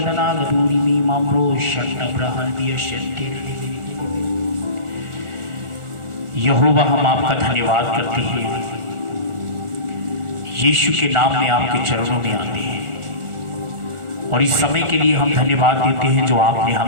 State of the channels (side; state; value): left; late; 1.4 ms